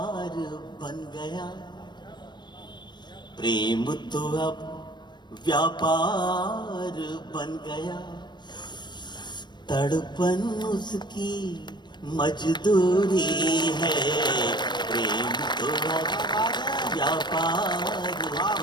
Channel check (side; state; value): right; late; 0.22 ms